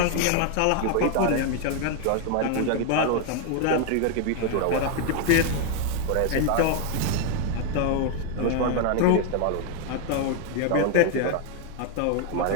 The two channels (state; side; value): different; both; correlation 0.01